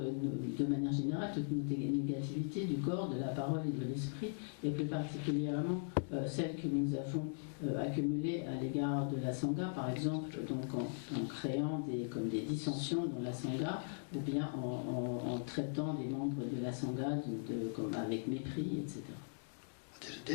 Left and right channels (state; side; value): silent; right; digital silence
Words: manière générale toutes nos négativités du corps, de la parole et de l'esprit, et plus particulièrement celles que nous avons accumulées à l'égard de la Sangha, par exemple donc en créant comme des dissensions dans la Sangha, ou bien en traitant des membres de la Sangha comme avec mépris, etc.